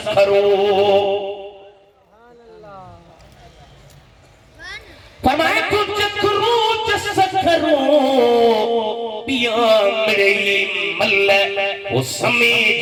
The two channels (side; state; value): both; identical; correlation 1.00